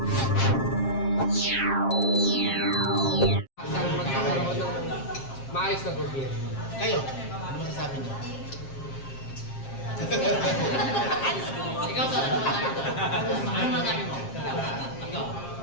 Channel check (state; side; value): late; right; 7.5 ms